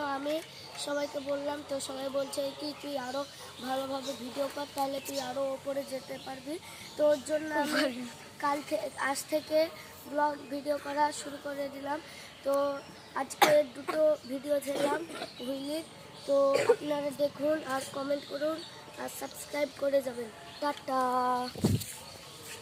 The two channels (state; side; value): identical; both; correlation 1.00